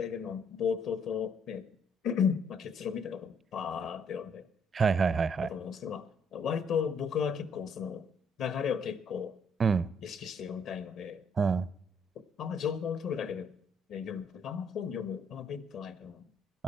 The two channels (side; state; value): both; normal; correlation 0.67